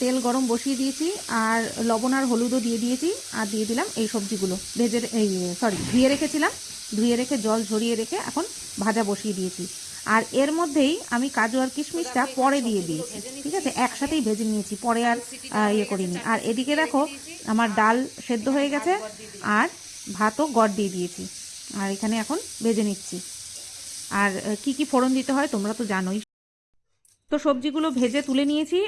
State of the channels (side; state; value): both; identical; correlation 1.00